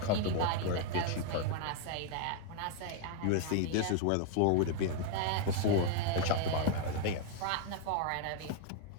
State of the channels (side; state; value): both; different; correlation 0.00